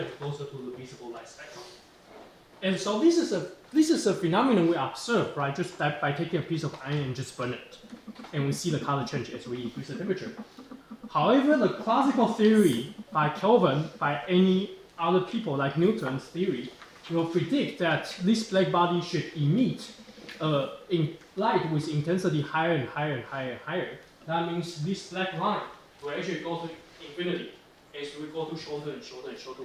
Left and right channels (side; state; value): both; identical; correlation 1.00